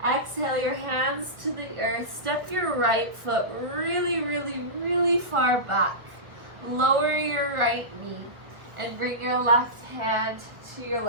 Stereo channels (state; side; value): late; left; 1.6 ms